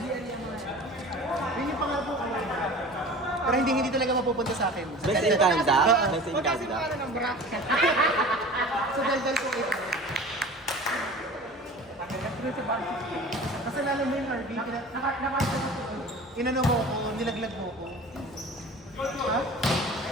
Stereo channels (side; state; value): both; normal; correlation 0.40